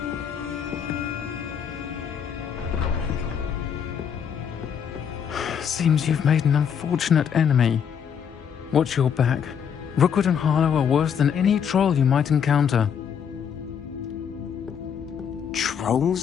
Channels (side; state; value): right; quieter; 7.7 dB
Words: Seems you've made an unfortunate enemy. Watch your back. Rookwood and Harlow are worse than any troll you might encounter.